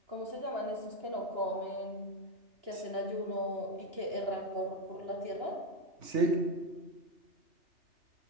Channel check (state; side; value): late; left; 2.9 ms